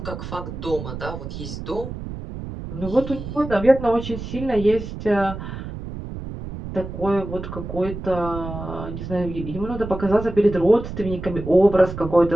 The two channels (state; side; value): noise; right; rumble, 9 dB below the sound